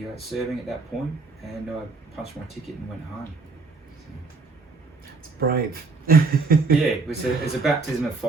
serving at that point, and I punched my ticket and went home. It's brave. Yeah, it was a baptism of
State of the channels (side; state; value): left; quieter; 4.2 dB